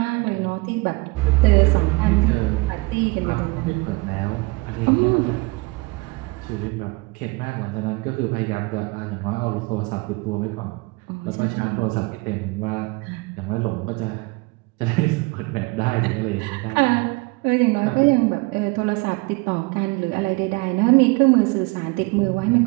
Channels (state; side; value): quieter; left; 25.6 dB